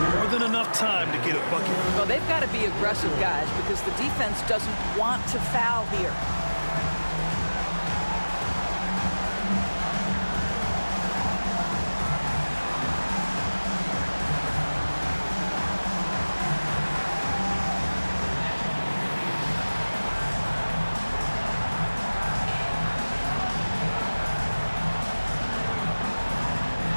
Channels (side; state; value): both; inverted; correlation -1.00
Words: More than enough time to get a bucket. Well, they've got to be aggressive, guys, because the defense doesn't want to foul here.